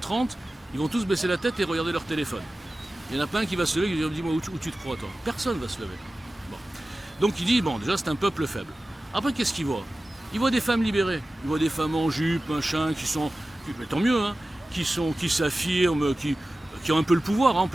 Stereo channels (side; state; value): both; normal; correlation 0.96